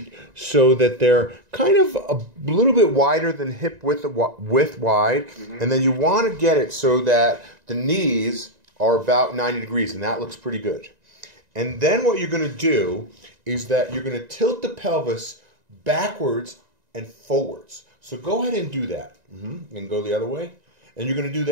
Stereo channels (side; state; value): left; late; 1.9 ms